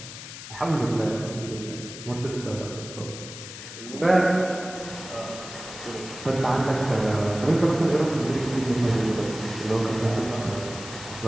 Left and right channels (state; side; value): noise; left; hiss, 12 dB below the sound